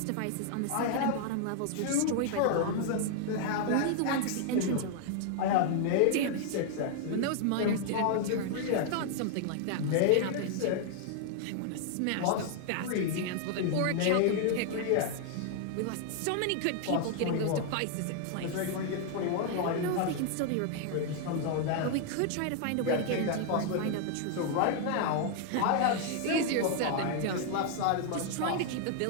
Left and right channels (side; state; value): both; different; correlation 0.00